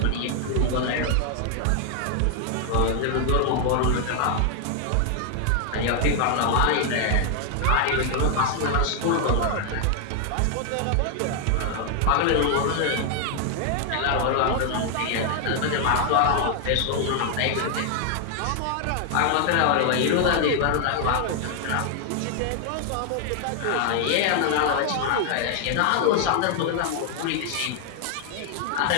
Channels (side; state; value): both; different; correlation 0.00